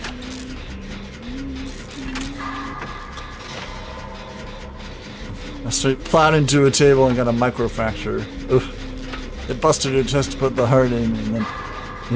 I straight plowed into a table and got a microfracture. Oof. It busted her chest to put the heart in and then, you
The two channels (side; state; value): both; identical; correlation 1.00